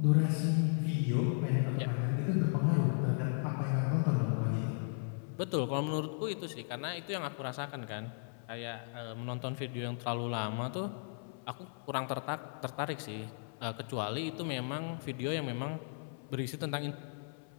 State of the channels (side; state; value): right; silent; 54 dB below the other